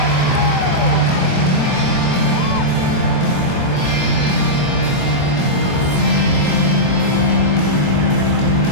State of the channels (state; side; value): late; right; 23 ms